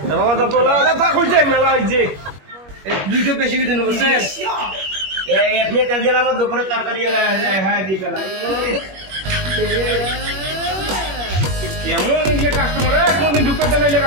বাবা তো তোলা কথা কইছে মেলা হইছে। এই দুইটো বেশি দিন বুঝছেন? এই আপনি তেল দিলাম, আমার দুপুরে তরকারি হ্যাঁ দিয়ে গেলাম। কেমন এই যে কাস্টমার কোনদিন ঢুকতে নাইলে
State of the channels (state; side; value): late; left; 21 ms